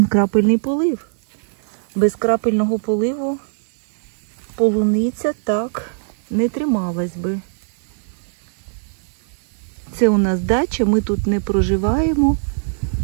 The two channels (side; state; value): left; silent; digital silence